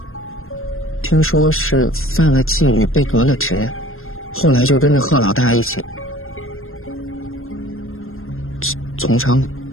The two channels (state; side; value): late; right; 0.60 ms